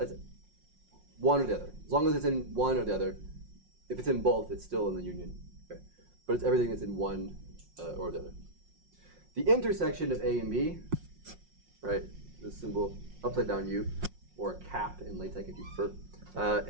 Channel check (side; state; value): left; late; 5.6 ms